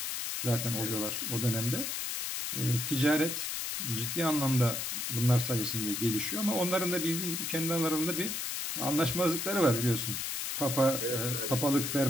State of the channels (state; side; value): noise; left; hiss, 3 dB below the sound